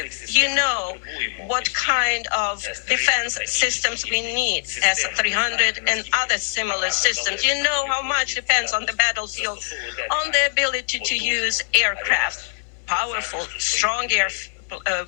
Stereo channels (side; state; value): right; silent; 64 dB below the other